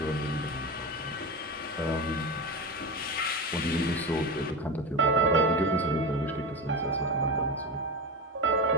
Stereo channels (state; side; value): normal; both; correlation 0.21